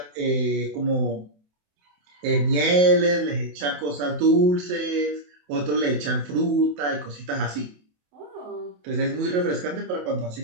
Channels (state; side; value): late; left; 27 ms